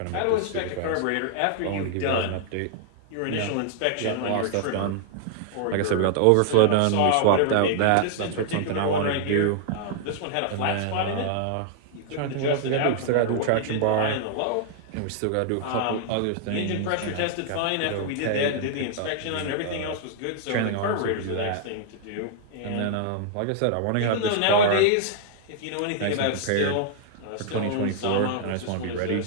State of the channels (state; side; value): different; both; correlation -0.01